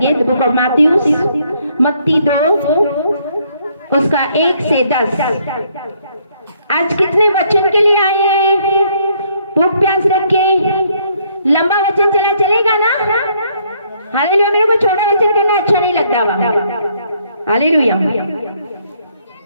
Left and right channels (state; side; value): inverted; both; correlation -0.68